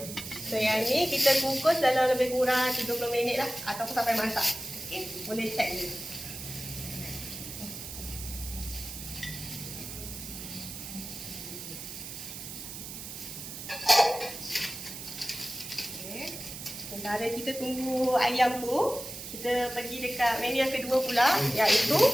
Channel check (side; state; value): right; noise; hiss, 10 dB below the sound